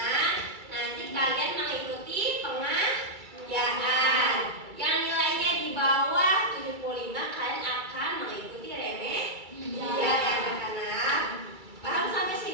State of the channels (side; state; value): left; late; 2.3 ms